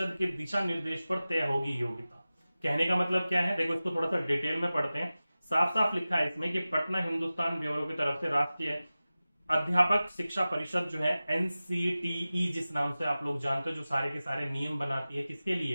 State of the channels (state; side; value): inverted; both; correlation -0.96